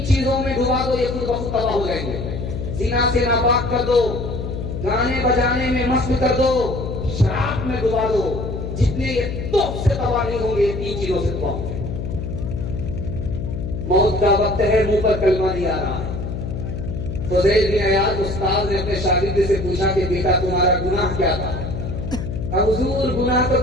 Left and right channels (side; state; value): left; noise; hum, 5 dB below the sound